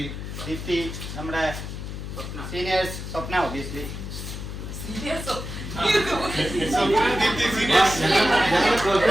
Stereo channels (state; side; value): noise; left; hum, 7 dB below the sound